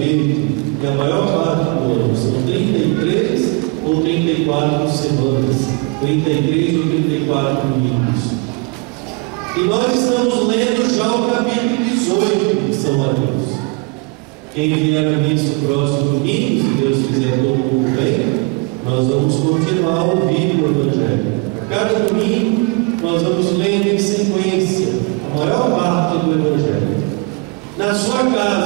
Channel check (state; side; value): quieter; left; 28.7 dB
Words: e a maior parte do ano são 33 ou 34 semanas, 33 ou 34 domingos. E nós estamos lendo já o capítulo 18 de São Mateus. Quem vier a missa no próximo domingo, se Deus quiser, todo mundo bem, nós vamos continuar a ouvir o Evangelho. A cada domingo, nós vamos lendo em sequência a maior parte do Evangelho. Na sua